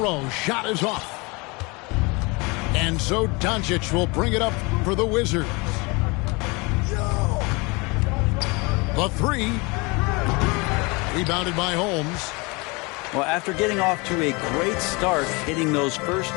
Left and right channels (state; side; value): quieter; right; 27.4 dB